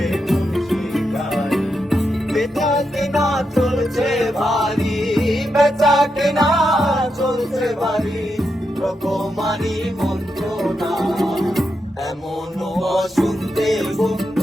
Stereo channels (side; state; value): both; normal; correlation 0.85